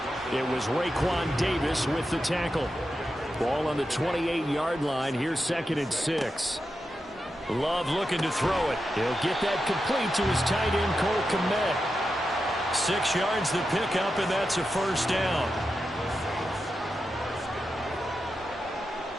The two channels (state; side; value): normal; both; correlation 0.89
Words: It was Raekwon Davis with the tackle. Ball on the 28-yard line. Here's 2nd and 6. Love looking to throw it. He'll get that complete to his tight end, Cole Kmet. 6 yards the pickup, and that's a first down.